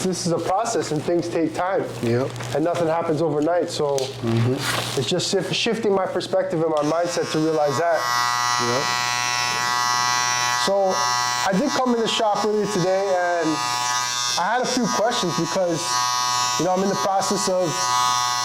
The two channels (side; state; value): both; identical; correlation 1.00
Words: this is a process and things take time. Yep. And nothing happens overnight. So it's just shifting my perspective and my mindset to realize that. Yep. So I did come in the shop earlier today and I had a few questions because, you know, I'm in the process of,